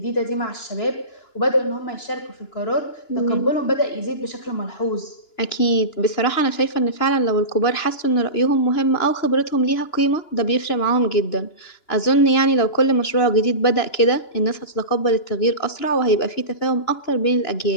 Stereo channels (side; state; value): right; late; 2.9 ms